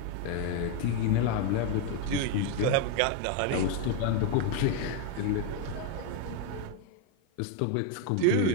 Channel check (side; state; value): both; different; correlation 0.01